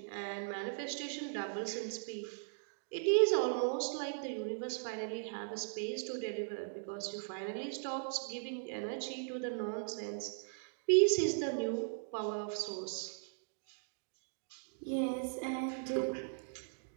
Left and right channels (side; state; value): left; silent; digital silence